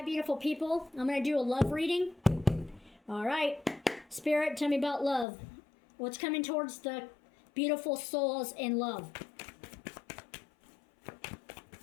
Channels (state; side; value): drops out; right; at 5.2 s